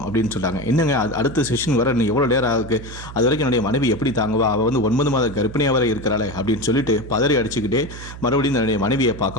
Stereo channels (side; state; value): right; noise; hum, 13 dB below the sound